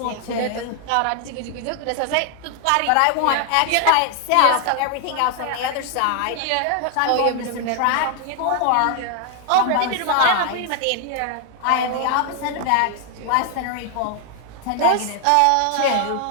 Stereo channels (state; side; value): different; both; correlation 0.00